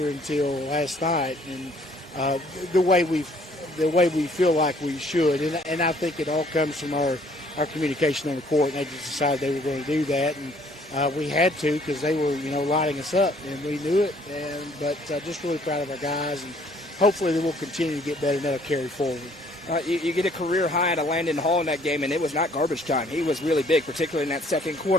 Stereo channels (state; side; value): normal; both; correlation 0.61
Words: until last night, and the way we feel like we should, and I think it all comes from our communication on the court, and they just decided they were going to do that, and we had to because they were lighting us up, and we knew it, but just really proud of our guys, and hopefully they will continue to get better, and that'll carry forward. You get a career high out of Landon Hall in that game, and it was not garbage time. He was really big, particularly in that second